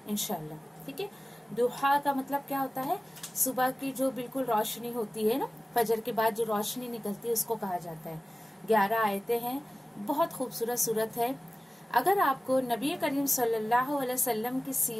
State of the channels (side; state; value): both; normal; correlation 0.97